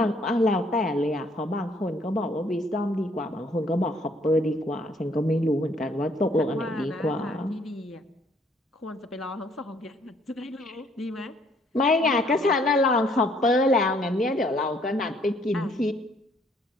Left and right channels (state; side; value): normal; both; correlation 0.64